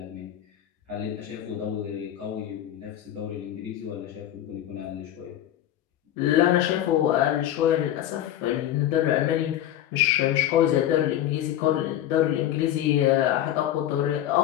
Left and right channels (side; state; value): right; quieter; 12.1 dB